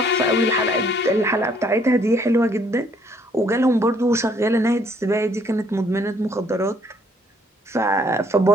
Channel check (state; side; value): normal; both; correlation 0.64